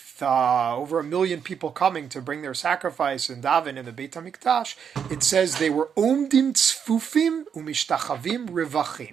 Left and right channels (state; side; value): quieter; left; 7.4 dB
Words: over 1 million people coming to bring their sacrifice and daven in the Beit Hamikdash, it says they were omdim tzfufim umishtachavim